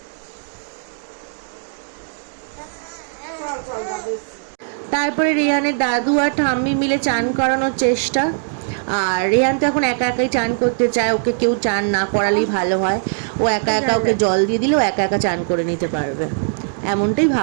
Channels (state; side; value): silent; left; digital silence